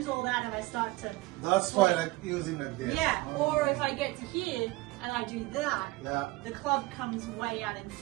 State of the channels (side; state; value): left; quieter; 21.3 dB